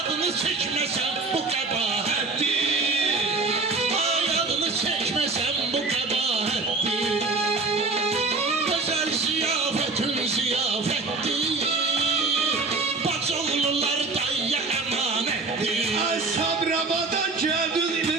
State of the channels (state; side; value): quieter; left; 3.7 dB